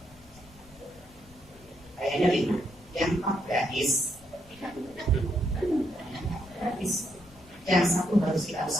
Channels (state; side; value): noise; left; rumble, 24 dB below the sound